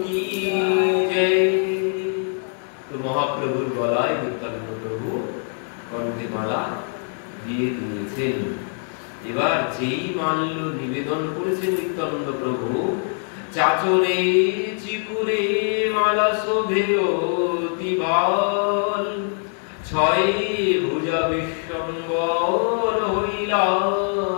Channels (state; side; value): silent; right; 55 dB below the other